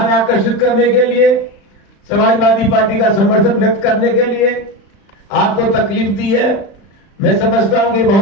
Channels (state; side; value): late; right; 36 ms